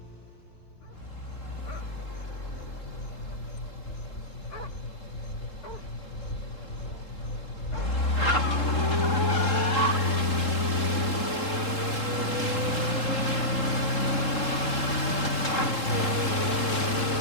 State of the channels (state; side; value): late; right; 3.7 ms